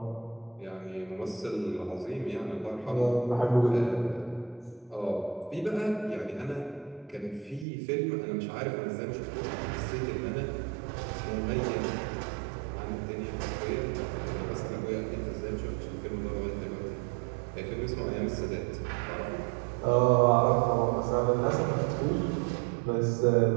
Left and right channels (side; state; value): left; drops out; at 7.7 s